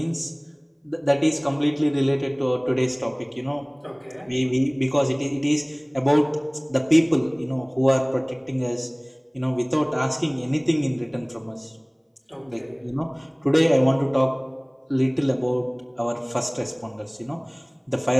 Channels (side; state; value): both; identical; correlation 1.00